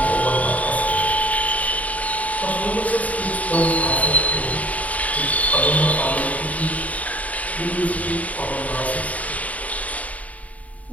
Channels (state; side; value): late; right; 0.070 ms